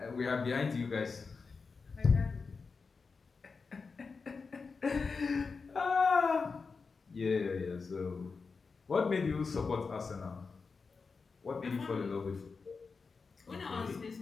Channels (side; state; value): right; quieter; 4.7 dB